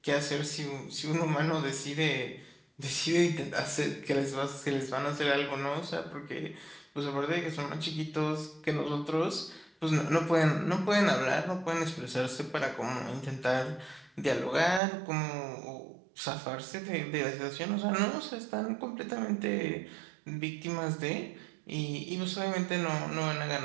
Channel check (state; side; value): drops out; left; at 14.8 s